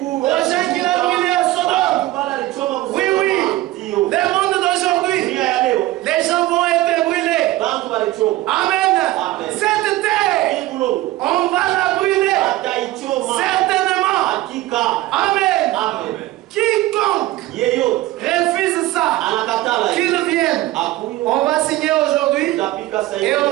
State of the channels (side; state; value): left; quieter; 17.1 dB